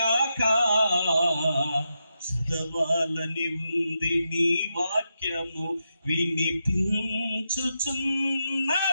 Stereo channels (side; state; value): both; inverted; correlation -0.86